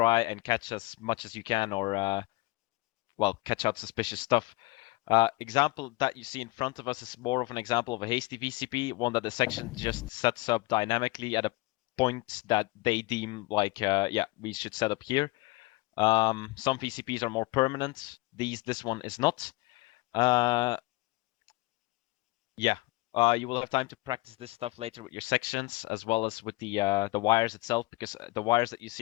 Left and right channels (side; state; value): right; quieter; 22.3 dB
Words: and catch as much as you can, or well, catch out suspicious stuff. Example that you see in front of us is more of an example of a hasty VCP, one that the section just sets up dynamically at a point that they deem like, yeah, we should set up here. Some VCPs are more permanent. This one is not. Yeah, you will have time to practice this stuff later with your sections, as well as with the wires itself, because the wires that you